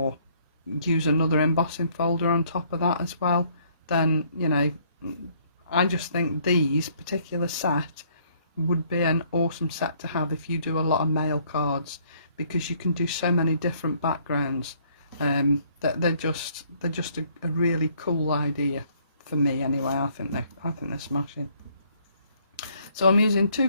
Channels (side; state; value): both; inverted; correlation -0.64